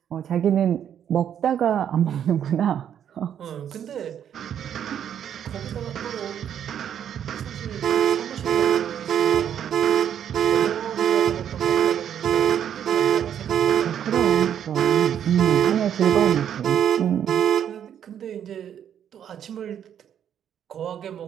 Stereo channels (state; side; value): quieter; left; 9.3 dB